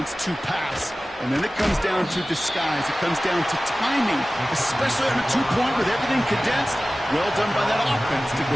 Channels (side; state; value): both; normal; correlation 0.97